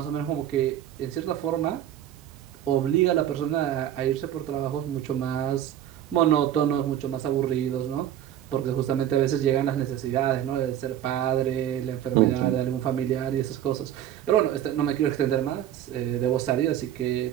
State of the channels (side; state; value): left; quieter; 11.4 dB